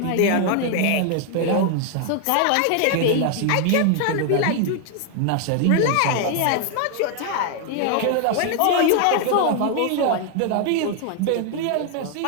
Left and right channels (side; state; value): both; different; correlation 0.00